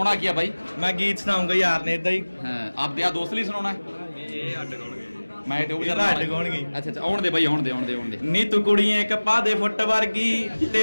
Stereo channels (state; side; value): inverted; both; correlation -1.00